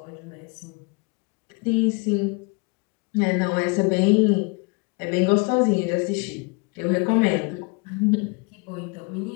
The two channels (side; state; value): right; quieter; 30.4 dB